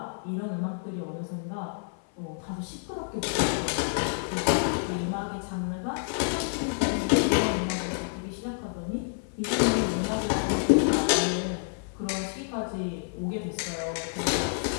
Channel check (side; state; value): right; silent; 56 dB below the other